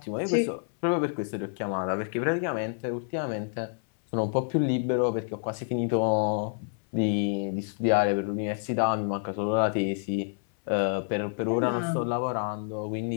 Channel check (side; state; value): right; silent; 59 dB below the other